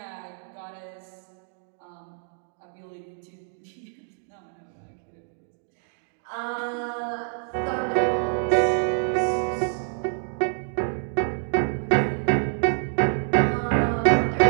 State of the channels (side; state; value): left; silent; 61 dB below the other